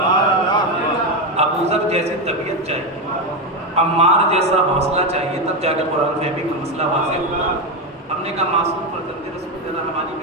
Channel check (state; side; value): normal; both; correlation 0.11